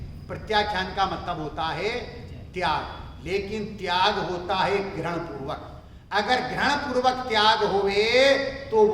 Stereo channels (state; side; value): identical; both; correlation 1.00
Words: प्रत्याख्यान का मतलब होता है त्याग, लेकिन त्याग होता है ग्रहण पूर्वक। अगर ग्रहण पूर्वक त्याग होवे तो